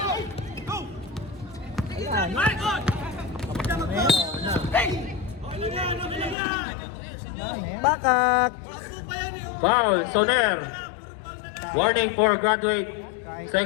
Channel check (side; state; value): right; drops out; at 6.4 s